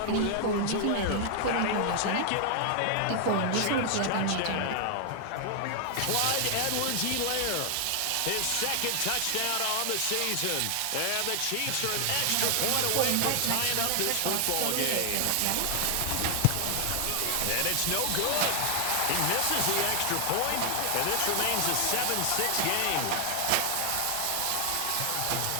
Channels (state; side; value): different; both; correlation 0.00